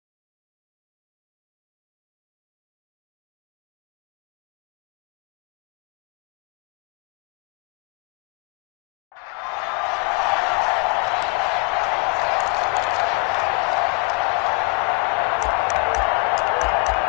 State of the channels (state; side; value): quieter; right; 28.1 dB